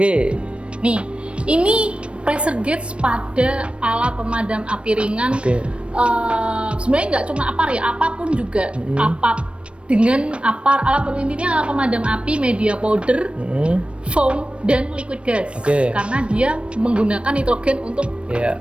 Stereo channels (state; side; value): late; left; 0.059 ms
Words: ini pressure gauge pada alat pemadam api ringan. Sebenarnya nggak cuma apar ya, apapun juga. Dengan apar, alat pemadam api, media powder, foam, dan liquid gas. Karena dia menggunakan nitrogen untuk